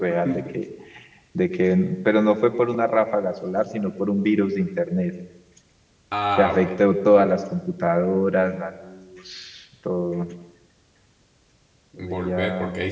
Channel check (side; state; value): both; identical; correlation 1.00